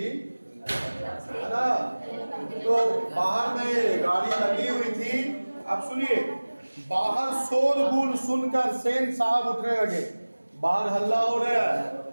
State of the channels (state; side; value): inverted; both; correlation -1.00